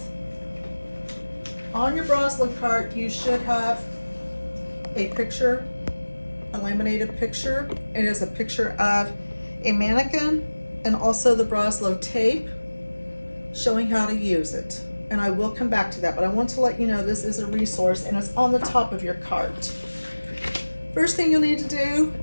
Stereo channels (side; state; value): both; inverted; correlation -1.00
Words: On your Broslow cart, you should have a picture, a laminated picture. It is a picture of a mannequin and also the Broslow tape showing how to use it. And I will come back to that, but I want to let you know this is a resource and it's on the top of your cart. First thing you'll need to do